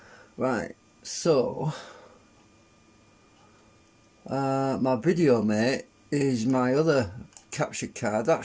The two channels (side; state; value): both; identical; correlation 1.00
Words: right? So my video mate is my other capture card. That